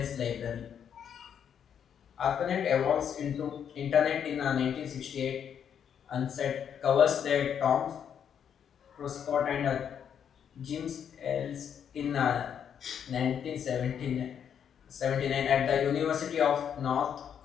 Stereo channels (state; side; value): quieter; right; 8.3 dB